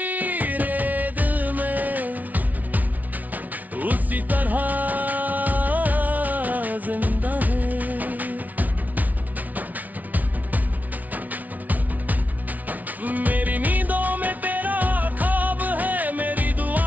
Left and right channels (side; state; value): left; late; 0.075 ms